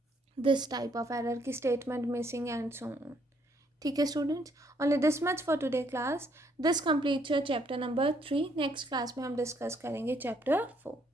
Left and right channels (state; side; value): normal; both; correlation 0.69